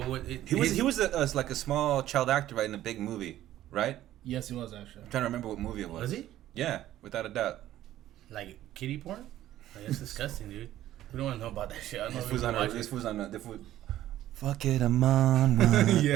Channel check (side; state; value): left; quieter; 13.4 dB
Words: He was like a small child actor, right, in a big movie, right? Yes, he was actually. I'm trying to remember what movie it was. Was he? Yeah, without a doubt. Like kitty porn? Like, that's disgusting, dude. We don't want to know about that shit. I don't know This if we was can watch on it. this was fuck it, I'm on one.